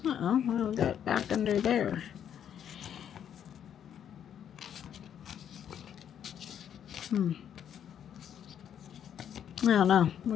Uh-oh, what do we got back under there? I don't know.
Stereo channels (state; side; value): quieter; right; 9.2 dB